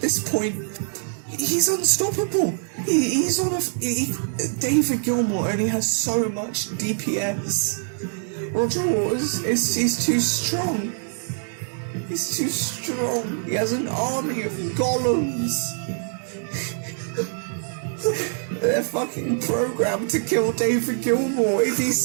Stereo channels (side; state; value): left; silent; digital silence